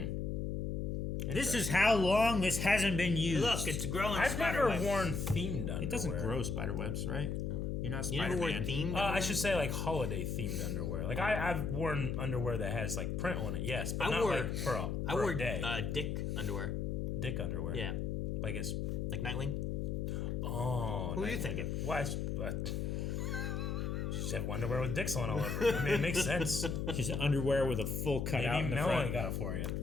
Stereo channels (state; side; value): noise; left; hum, 1 dB below the sound